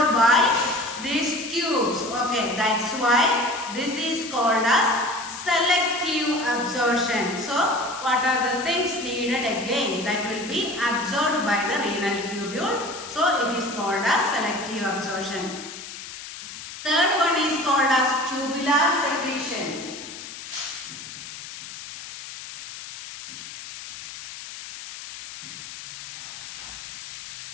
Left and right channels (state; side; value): noise; left; hiss, 11 dB below the sound